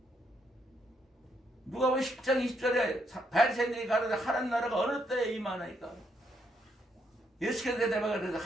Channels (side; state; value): both; normal; correlation 0.75